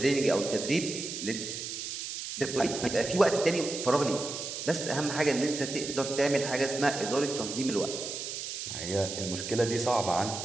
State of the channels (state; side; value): noise; right; hiss, 6 dB below the sound